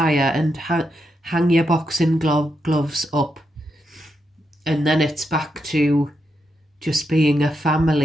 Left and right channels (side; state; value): both; normal; correlation 0.84